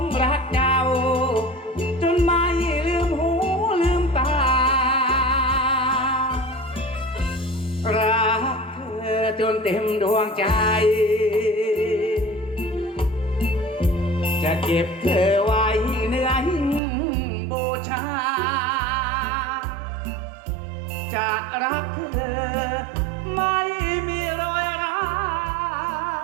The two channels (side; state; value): left; drops out; at 16.8 s